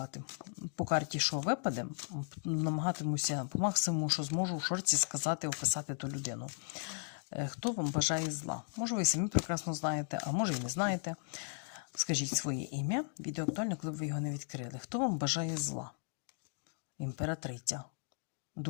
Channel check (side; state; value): right; silent; 54 dB below the other